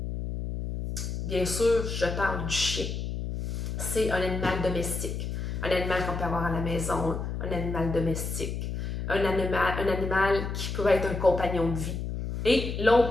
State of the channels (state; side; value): noise; left; hum, 4 dB below the sound